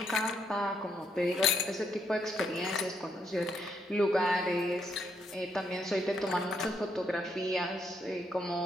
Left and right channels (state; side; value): normal; both; correlation 0.76